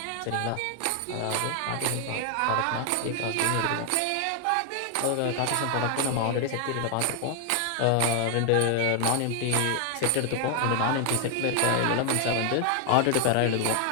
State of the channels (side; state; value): both; different; correlation 0.00